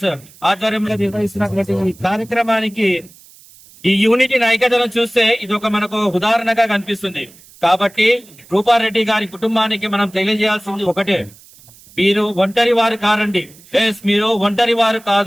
ఆధ్వర్యంలో నిర్వహిస్తున్నటువంటి ఈ కార్యక్రమానికి ఈ యూనిటీని, ఐక్యతను చూస్తే ఇది ఒక మనకు ఉదాహరణగా కనిపిస్తుంది. కాబట్టి రూపారెడ్డి గారి కుటుంబానికి మనం తెలియజేయాల్సింది ఒకటే, మీరు ఒంటరి వారు కారండి. మీరు ఒంటరి వారు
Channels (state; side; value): noise; right; hiss, 24 dB below the sound